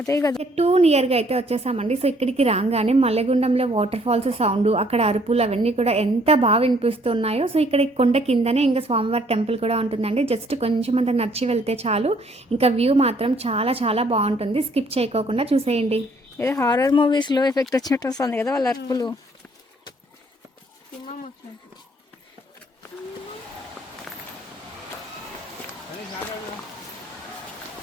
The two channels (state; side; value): normal; both; correlation 0.63